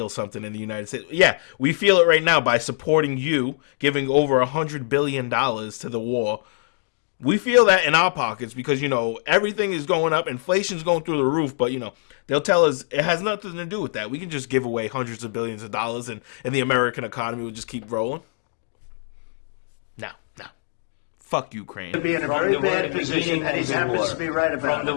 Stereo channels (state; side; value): silent; right; digital silence